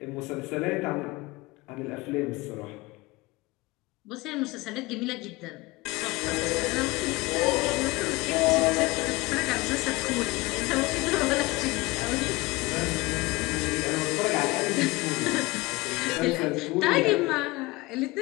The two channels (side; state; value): right; quieter; 22.2 dB